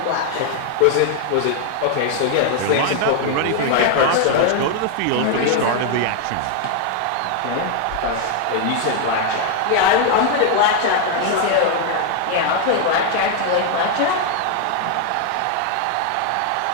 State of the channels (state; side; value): different; both; correlation 0.00